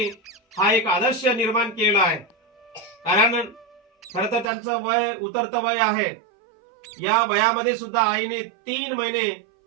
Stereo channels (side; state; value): left; drops out; at 4.5 s